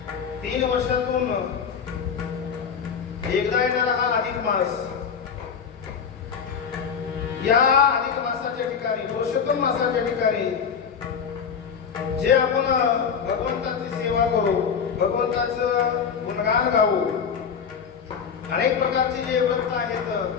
3 वर्षातून एकदा येणारा हा अधिक मास, या अधिक मासाच्या ठिकाणी, पुरुषोत्तम मासाच्या ठिकाणी जे आपण भगवंताची सेवा करू, भगवंताचं गुणगान गाऊ, अनेक प्रकारचे जे व्रत आहेत,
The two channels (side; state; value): right; quieter; 6.7 dB